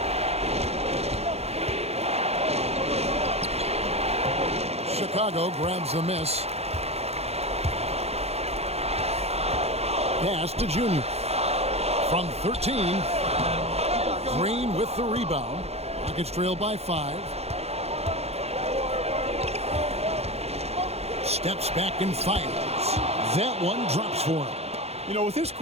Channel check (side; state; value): left; late; 0.30 ms